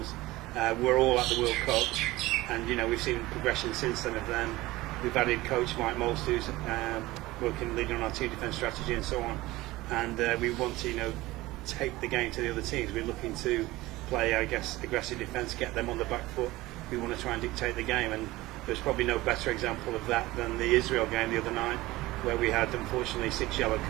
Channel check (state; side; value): quieter; left; 18.8 dB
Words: we're all at the World Cup, and we've seen progression since then of them. We've added coach Mike Most, who's leading on our team defence strategy and so on, and we want to take the game to the other teams. We're looking to play, I guess, aggressive defence, get them on the back foot. We want to try and dictate the game, and there's probably no better example of that than the Israel game the other night, where we had unfortunately 6 yellow